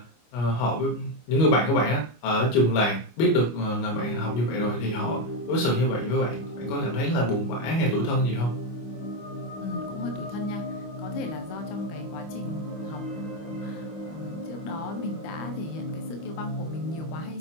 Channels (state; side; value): late; right; 25 ms